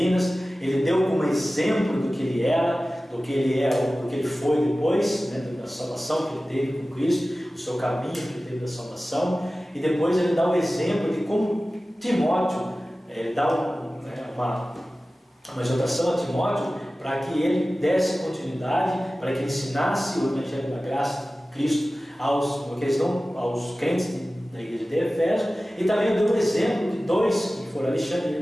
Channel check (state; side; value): normal; both; correlation 0.96